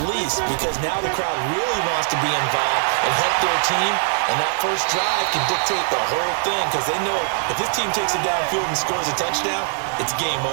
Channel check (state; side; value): silent; left; 65 dB below the other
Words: least, because now the crowd really wants to be involved and help their team, and that first drive can dictate the whole thing, because they know if this team takes it downfield and scores a touchdown, it's game